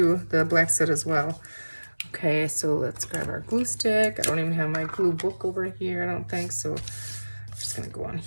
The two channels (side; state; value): both; inverted; correlation -1.00